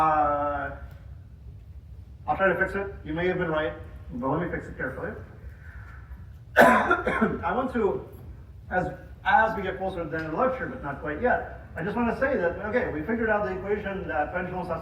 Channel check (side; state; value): both; identical; correlation 1.00